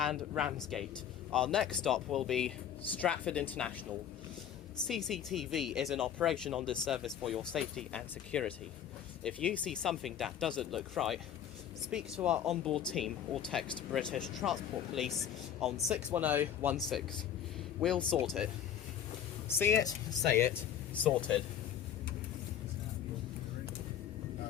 Ramsgate. Our next stop will be Stratford International. CCTV is in operation on this service for your safety and security. If you see something that doesn't look right, speak to our onboard team or text British Transport Police on 61016. We'll sort it. See it, say it, sorted.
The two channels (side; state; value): right; quieter; 9.5 dB